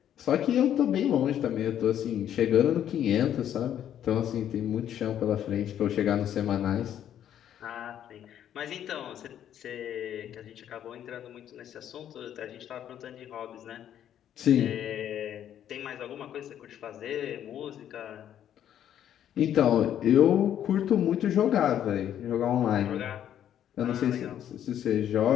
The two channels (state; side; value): quieter; right; 10.4 dB